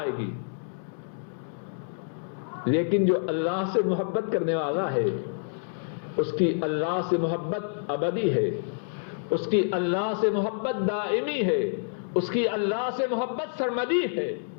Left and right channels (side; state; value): right; silent; 59 dB below the other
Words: گی۔ لیکن جو اللہ سے محبت کرنے والا ہے اس کی اللہ سے محبت ابدی ہے، اس کی اللہ سے محبت دائمی ہے، اس کی اللہ سے محبت سرمدی ہے۔